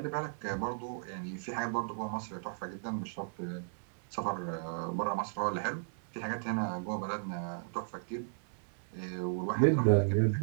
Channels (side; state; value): left; silent; digital silence